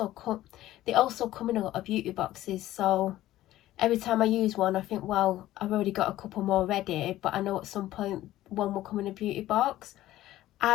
also come in a lot of beauty boxes, so every time I use one, I think, well, I've already got a couple more ready, but I know at some point one will come in a beauty box.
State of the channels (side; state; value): right; quieter; 14.8 dB